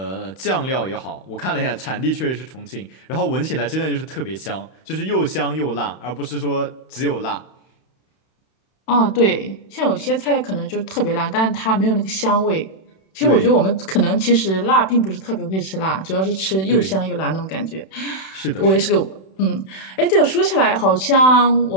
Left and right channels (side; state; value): right; late; 31 ms